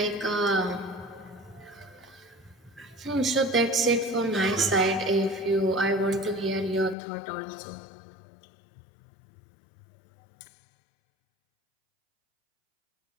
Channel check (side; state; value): right; drops out; at 7.0 s